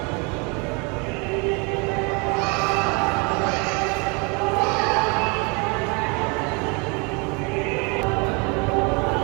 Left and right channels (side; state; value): left; quieter; 31.2 dB